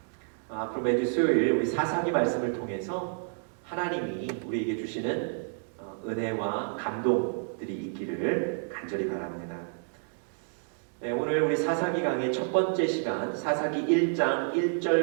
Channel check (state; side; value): silent; left; digital silence